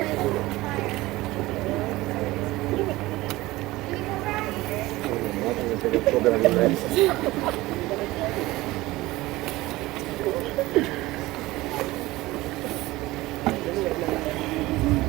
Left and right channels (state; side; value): quieter; left; 19.0 dB